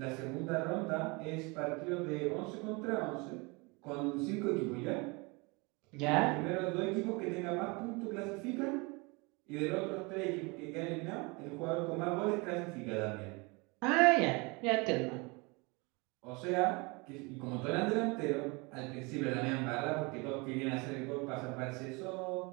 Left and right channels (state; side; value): quieter; left; 27.7 dB